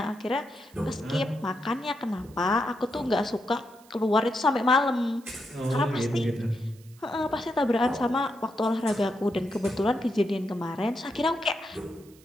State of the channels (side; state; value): right; noise; hiss, 27 dB below the sound